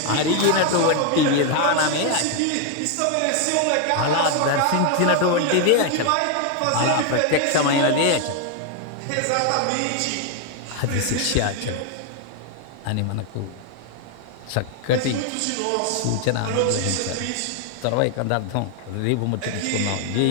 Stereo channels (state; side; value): different; both; correlation 0.00